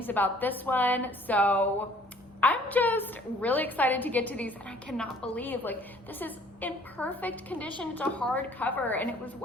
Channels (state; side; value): normal; both; correlation 0.55